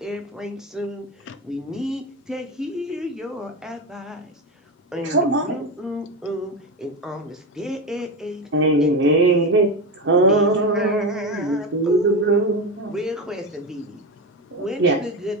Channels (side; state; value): both; normal; correlation 0.18